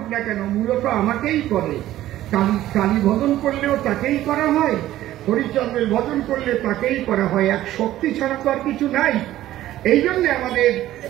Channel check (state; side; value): quieter; left; 14.1 dB